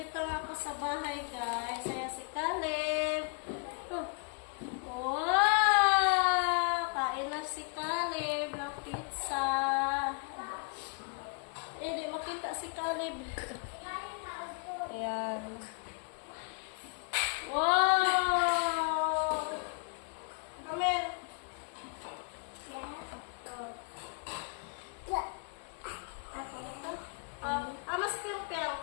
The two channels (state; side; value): quieter; right; 37.1 dB